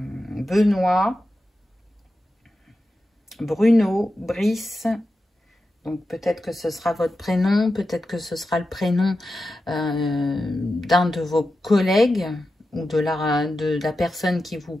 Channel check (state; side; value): normal; both; correlation 0.91